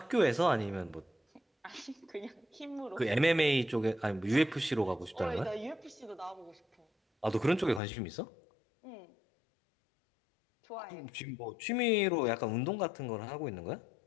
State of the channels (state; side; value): drops out; right; at 7.8 s